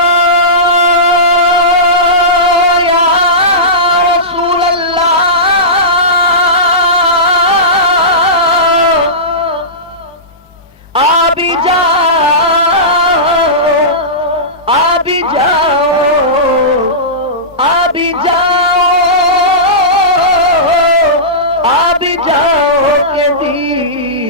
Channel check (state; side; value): normal; both; correlation -0.19